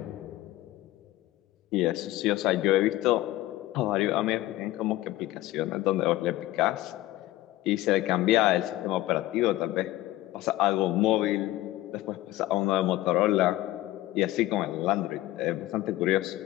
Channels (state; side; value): quieter; right; 16.4 dB